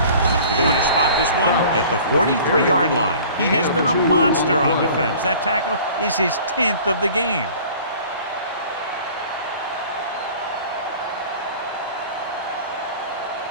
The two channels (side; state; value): both; inverted; correlation -0.46